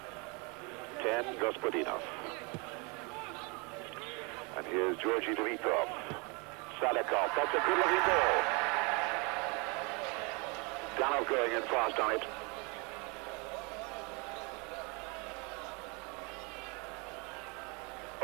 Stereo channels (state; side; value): quieter; left; 31.0 dB